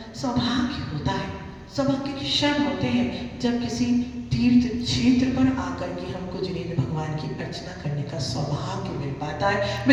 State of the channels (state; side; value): identical; both; correlation 1.00